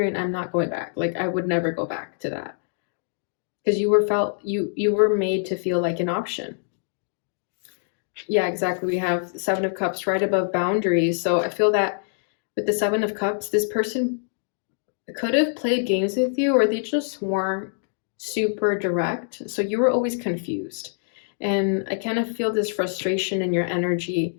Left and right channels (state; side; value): silent; right; digital silence